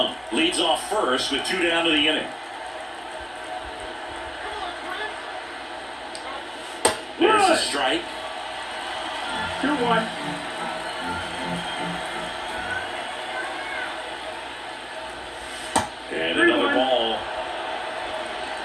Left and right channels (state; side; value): identical; both; correlation 1.00